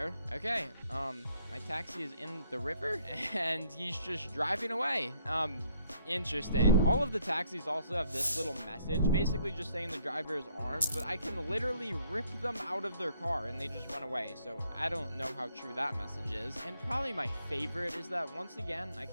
okay, my taxi is in the river and he's just driving away. Interesting. All of the taxis also have this little message, basically just saying the driver is armed, but I can literally rip them out of their car and they just run away. So I don't know how true that message is. And probably my favorite is that once again, I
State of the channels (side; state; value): both; inverted; correlation -0.66